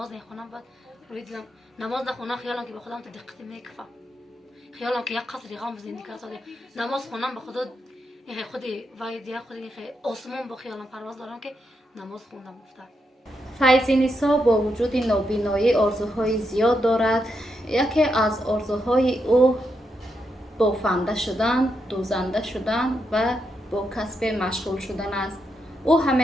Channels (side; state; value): both; normal; correlation 0.83